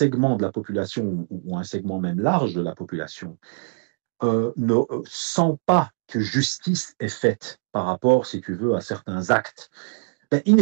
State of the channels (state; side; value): silent; left; digital silence